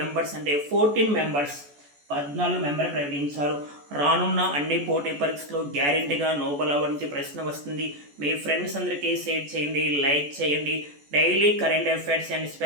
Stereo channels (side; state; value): left; late; 14 ms